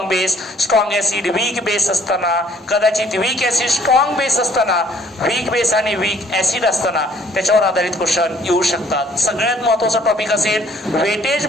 base, strong acid, weak base असताना, कदाचित वीक ऍसिड स्ट्रॉंग बेस असताना, वीक बेस आणि वीक ऍसिड असताना त्याच्यावर आधारित क्वेश्चन येऊ शकतात. सगळ्यात महत्वाचा टॉपिक असेल वेटेज.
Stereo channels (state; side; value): normal; both; correlation 0.59